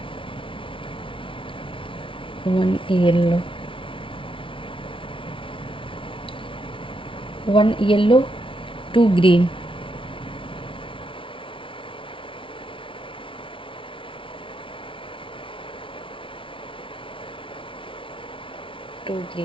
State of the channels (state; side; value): late; right; 0.25 ms